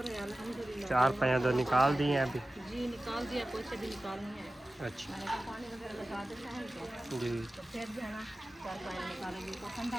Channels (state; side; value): normal; both; correlation 0.95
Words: है, अल्हम्दुलिल्लाह। 4 पैया तो निकाल दिए हैं अभी? जी निकाल दिया, पोछे भी निकालनी है। अच्छा मैंने कहा पानी वगैरह लगा देते हैं इनको, जी तो फिर जो है ना 4 पानी निकालेंगे तो